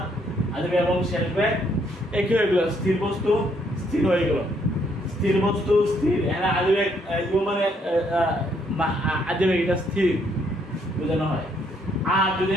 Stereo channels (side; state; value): both; normal; correlation 0.70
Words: আজবে এবং শেষ ব্যাগ একই হয়ে গেল। স্থির বস্তু স্থির হয়ে গেল। স্থির বস্তু স্থির, এখানে আজবে U মানে আজবে এটা স্থির বোঝানো হয়। আর